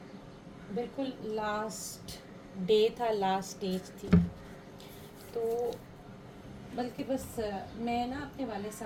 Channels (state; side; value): identical; both; correlation 1.00